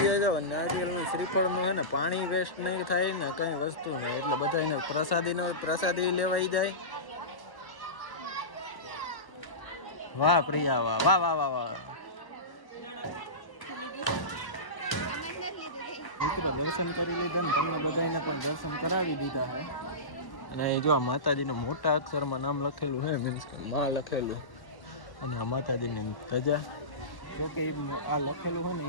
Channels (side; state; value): right; late; 1.1 ms